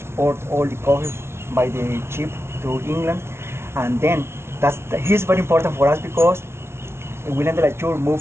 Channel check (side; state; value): left; late; 0.12 ms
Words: all the coffee by the ship to England, and then he's very important for us because William de la Tour